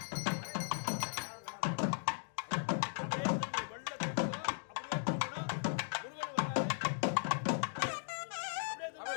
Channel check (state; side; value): silent; right; digital silence